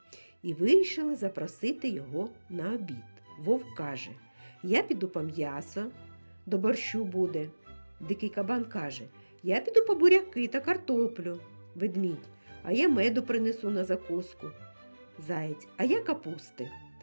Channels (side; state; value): both; inverted; correlation -1.00